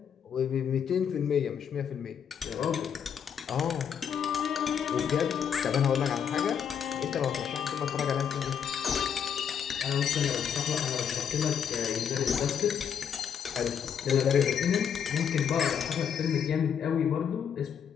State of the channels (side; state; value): right; quieter; 7.9 dB